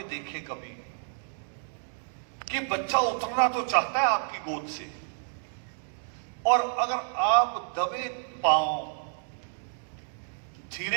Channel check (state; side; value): silent; left; digital silence